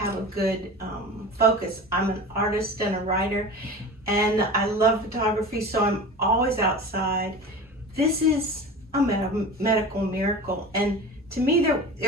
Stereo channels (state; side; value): normal; both; correlation 0.34